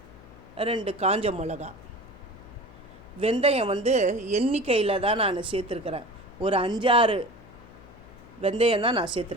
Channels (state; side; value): noise; left; hum, 21 dB below the sound